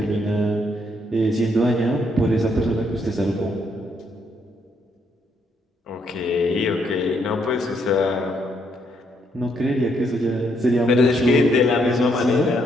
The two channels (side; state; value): both; normal; correlation 0.73